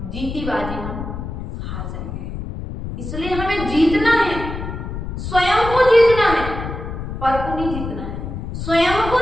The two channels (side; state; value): left; noise; rumble, 7 dB below the sound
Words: जीती बाजी हम हार जाएंगे। इसलिए हमें जीतना है, स्वयं को जीतना है, पर को नहीं जीतना है, स्वयं को